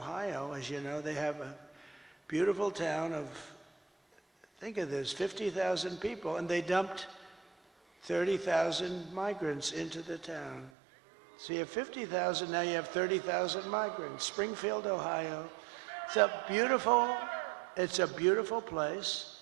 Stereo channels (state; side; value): drops out; left; at 10.7 s